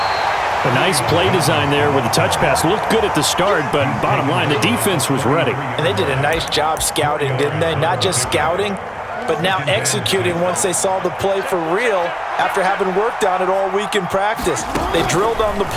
A nice play design there with the touch pass. Looked good at the start, but bottom line, the defense was ready. And they did a nice job scouting, didn't they? Not just scouting, but now executing once they saw the play for real after having worked on it all week in practice. They drilled on the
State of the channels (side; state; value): both; identical; correlation 1.00